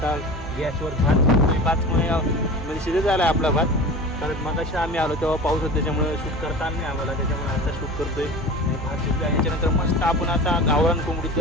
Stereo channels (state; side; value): normal; both; correlation 0.35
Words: गॅसवर भात शिजतोय. भातमुळे म्हणजे शिजत झाला आहे आपला भात. कारण मग अशा आम्ही आलो तेव्हा पाऊस होता, त्याच्यामुळे शूट करता आलं नाही आम्हाला. त्याच्यामुळे आता शूट करतोय. आणि भात शिजला. याच्यानंतर मस्त आपण आता गावरान